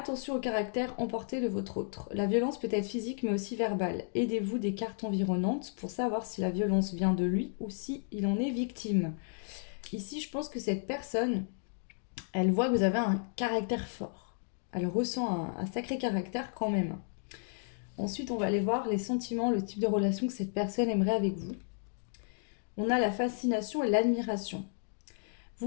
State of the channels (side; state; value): right; silent; digital silence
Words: au caractère emporté de votre autre. La violence peut être physique mais aussi verbale. Aidez-vous des cartes environnantes pour savoir si la violence vient de lui ou si il en est victime. Ici, je pense que cette personne, elle voit que vous avez un caractère fort. Elle ressent un sacré caractère quand même. Ensuite, on va aller voir les sentiments, le type de relation que cette personne aimerait avec vous. On a la fascination et l'admiration.